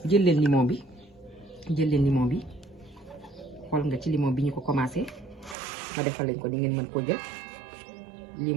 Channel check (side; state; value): left; drops out; at 5.6 s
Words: jël leen limon bi xool nga ci limon bi ñu ko commencé ma defal leen ko ni ngeen mën koo jël